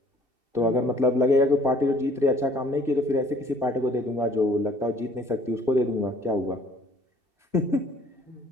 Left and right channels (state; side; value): late; left; 2.7 ms